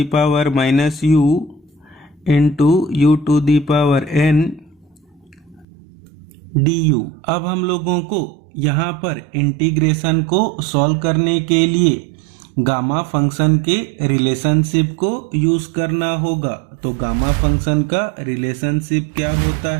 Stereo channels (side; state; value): left; drops out; at 5.7 s